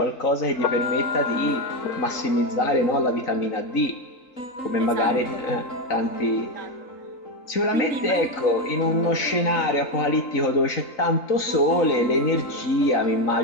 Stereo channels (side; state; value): right; late; 4.0 ms